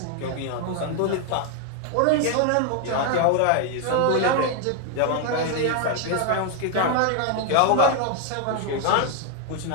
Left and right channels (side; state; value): both; different; correlation 0.00